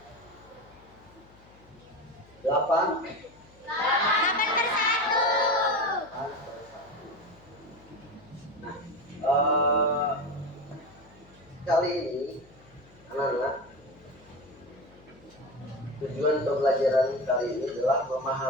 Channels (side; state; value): left; noise; hum, 26 dB below the sound